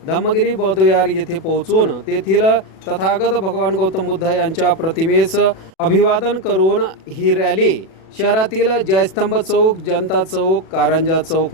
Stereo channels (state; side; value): late; right; 37 ms